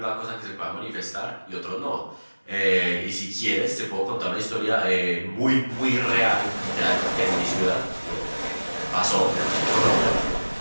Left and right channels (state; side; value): inverted; both; correlation -1.00